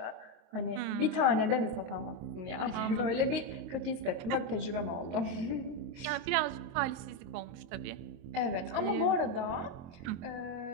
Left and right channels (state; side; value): late; left; 23 ms